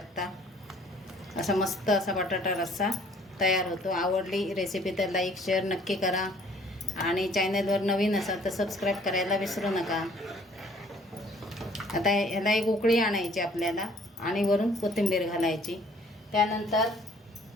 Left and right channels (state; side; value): normal; both; correlation 0.57